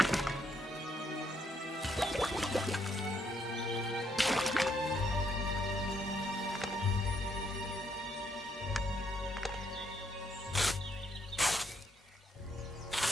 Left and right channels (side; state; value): both; normal; correlation 0.73